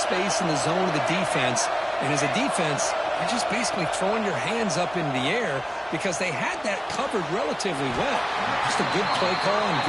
in the zone of the defense. And as a defense, you're just basically throwing your hands up in the air because they had that covered relatively well. Just a good play call and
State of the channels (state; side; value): identical; both; correlation 1.00